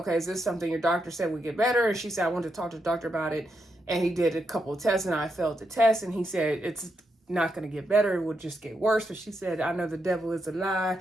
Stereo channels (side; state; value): both; normal; correlation 0.82